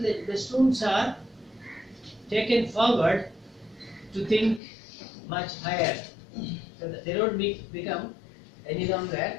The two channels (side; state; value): right; drops out; at 4.6 s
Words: the students are taken forward to think much higher. So that they don't become any longer